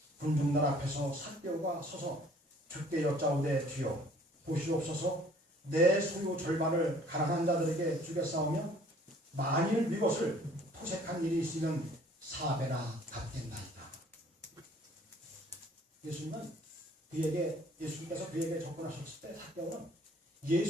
군중들 앞에서 삭개오가 서서 주께 여짜오되 주여 보시옵소서 내 소유 절반을 가난한 자들에게 주겠사오며 만일 이것을 토색한 일이 있으면 4배나 갚겠나이다. 예수님께서 그에게 접근하셨을 때 삭개오는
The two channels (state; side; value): normal; both; correlation 0.56